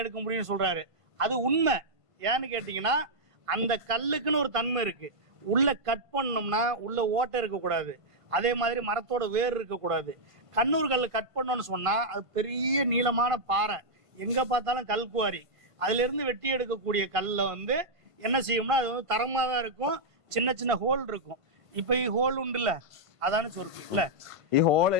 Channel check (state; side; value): late; left; 1.5 ms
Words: எடுக்க முடியும்னு சொல்றாரு. அது உண்மை. ஏன்னு கேட்டீங்கன்னா, அந்த கல்லுக்குன்னு ஒரு தன்மை இருக்கு. உள்ள கட் பண்ணோம்னா உள்ள ஓட்டை இருக்கக்கூடாது. அதே மாதிரி மரத்தோட வேர் இருக்கக்கூடாது. கண்ணூர் கல் கட் பண்ணோம்னு சொன்னா அது பெரிய நீளமான பாறை, எங்க பார்த்தாலும் கல்குவாரி. அதுல இருந்து வெட்டி எடுக்கக்கூடிய கல்ல வந்து என்ன செய்யும்னா அது வந்து தரமா தான் இருக்கும். சின்ன சின்ன ஹோல் இருக்கும். இப்ப ஹோல் உண்டுல்ல, அதானு சொல்றேன் இல்ல,